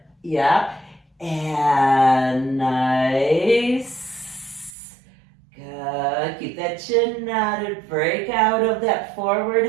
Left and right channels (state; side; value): drops out; left; at 4.8 s